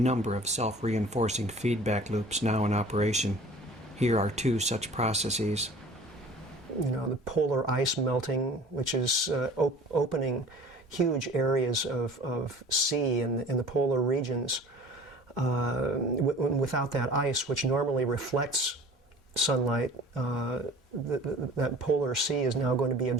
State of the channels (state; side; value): normal; both; correlation 0.46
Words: of self-reinforcing feedback loops now in operation. Here are two such processes. You know, the polar ice melting, which is opening huge areas of sea in the polar regions. Without that ice, which normally reflects sunlight, that polar sea is now going to be